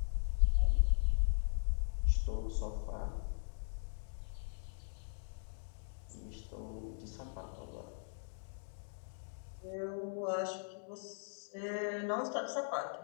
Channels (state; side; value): silent; right; digital silence